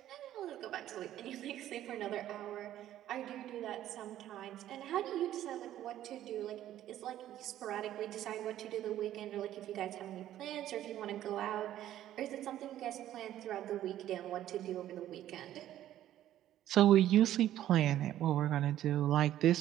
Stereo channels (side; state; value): left; quieter; 12.5 dB